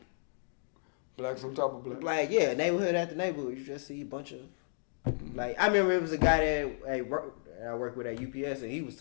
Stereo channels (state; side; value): silent; right; digital silence